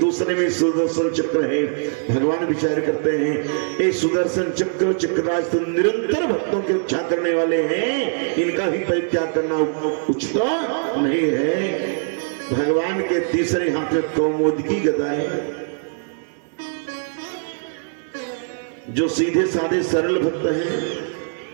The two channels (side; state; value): left; silent; 60 dB below the other